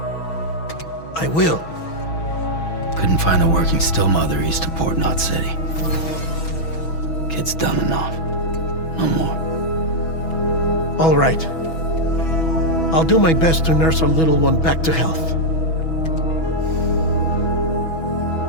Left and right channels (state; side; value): late; right; 6.2 ms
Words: I will. Couldn't find a working still mother east of Port Knot City. Kid's done enough. No more. All right. I'll do my best to nurse our little one back to health.